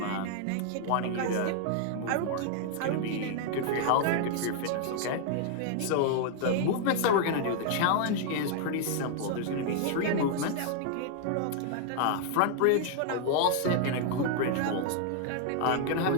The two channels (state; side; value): different; both; correlation 0.00